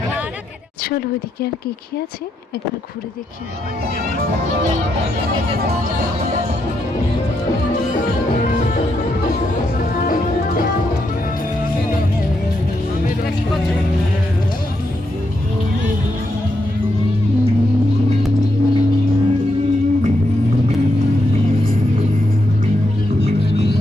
চলো ওইদিকে আর কে কে আছে একবার ঘুরে দেখি। কি করছো?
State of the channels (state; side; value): normal; both; correlation 0.81